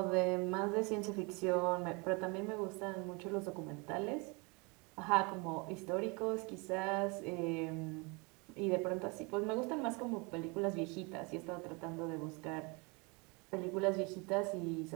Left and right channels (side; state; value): left; quieter; 29.5 dB